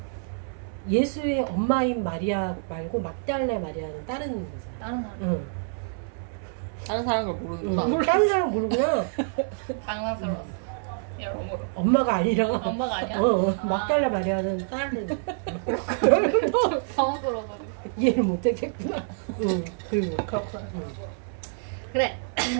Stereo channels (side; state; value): left; silent; 60 dB below the other